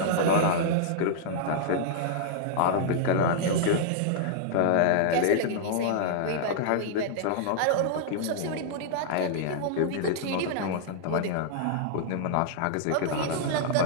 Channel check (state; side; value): different; both; correlation -0.01